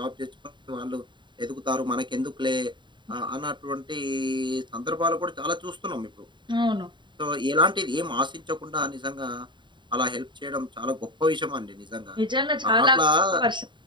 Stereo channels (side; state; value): left; late; 0.23 ms